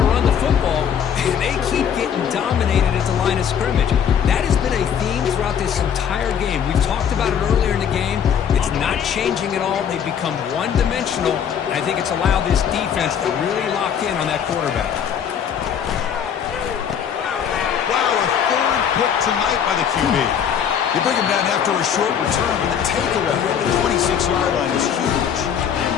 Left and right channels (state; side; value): quieter; right; 8.2 dB